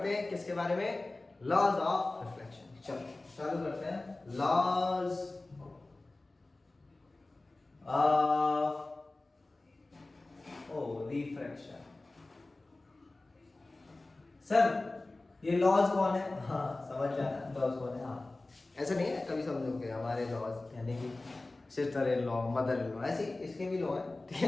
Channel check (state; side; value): quieter; right; 3.0 dB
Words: हैं किसके बारे में, लॉज ऑफ रिफ्लेक्शन। चलो चालू करते हैं, लॉज ऑफ रिफ्रैक्शन। सर ये लॉज कौन है, हाँ समझ जाना लॉज कौन है। हाँ ऐसा नहीं है, कभी समझोगे हमारे लॉज यानी कि sister in law, mother in law, ऐसे इसके भी लॉ है, ठीक